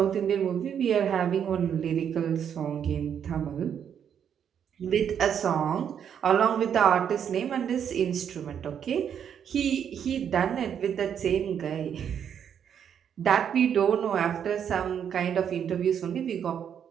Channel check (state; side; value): quieter; left; 8.4 dB